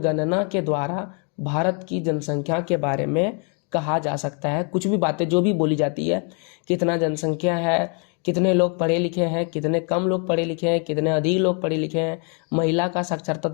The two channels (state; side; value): quieter; right; 38.1 dB